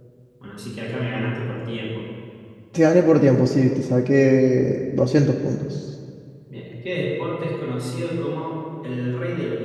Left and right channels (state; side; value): identical; both; correlation 1.00